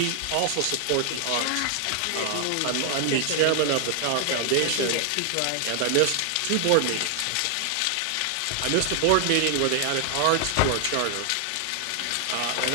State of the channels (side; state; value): both; different; correlation 0.00